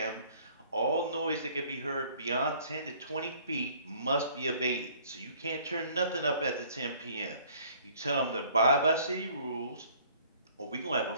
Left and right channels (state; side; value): inverted; both; correlation -0.56